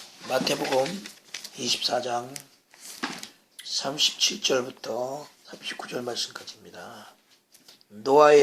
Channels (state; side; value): identical; both; correlation 1.00